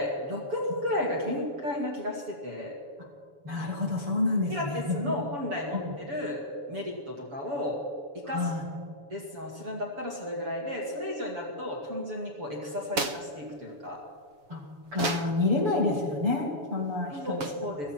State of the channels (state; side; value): late; left; 7.2 ms